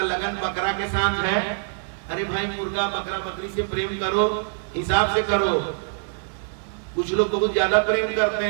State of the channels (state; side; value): silent; left; digital silence